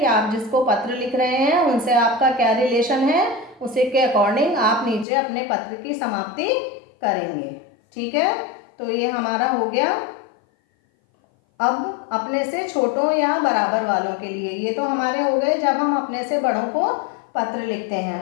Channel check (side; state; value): right; drops out; at 5.1 s